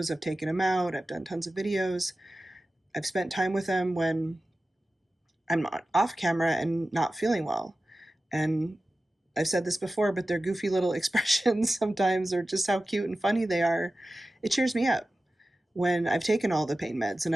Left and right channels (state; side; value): normal; both; correlation 0.95